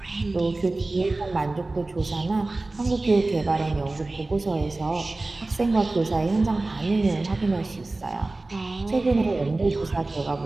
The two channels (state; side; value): quieter; left; 3.1 dB